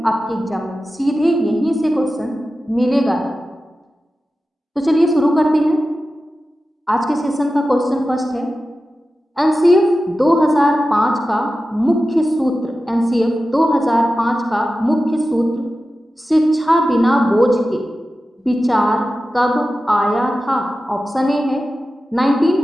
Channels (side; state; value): both; normal; correlation 0.94